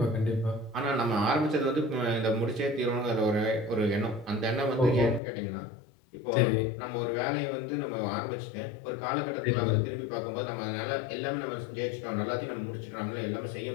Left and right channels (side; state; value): right; drops out; at 5.2 s